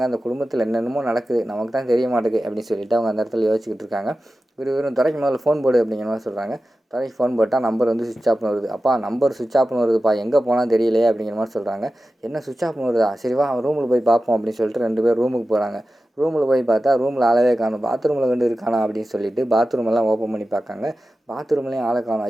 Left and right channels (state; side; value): normal; both; correlation 0.94